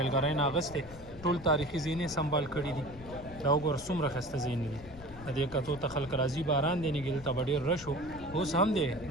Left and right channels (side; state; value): left; noise; rumble, 16 dB below the sound